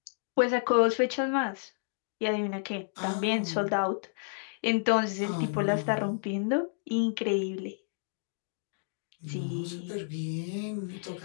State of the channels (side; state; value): right; silent; digital silence